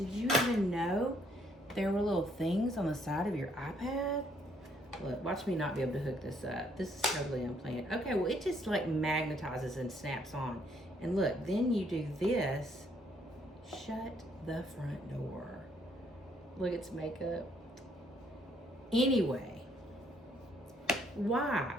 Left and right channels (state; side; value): normal; both; correlation 0.68